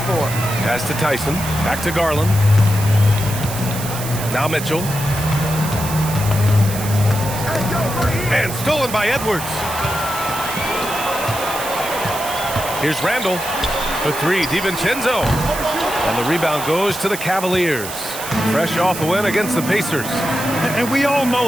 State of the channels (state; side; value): noise; right; hiss, 9 dB below the sound